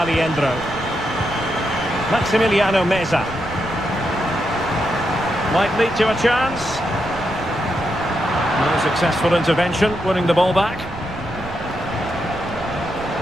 Maximiliano Meza. Might lead to a chance. A successful intervention, winning the ball back.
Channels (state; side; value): noise; right; rumble, 15 dB below the sound